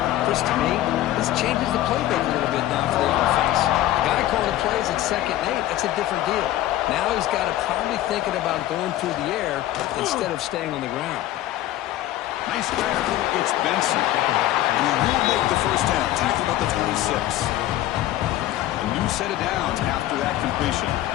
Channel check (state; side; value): quieter; right; 14.3 dB